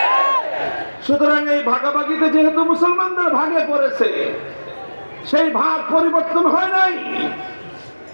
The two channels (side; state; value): both; inverted; correlation -1.00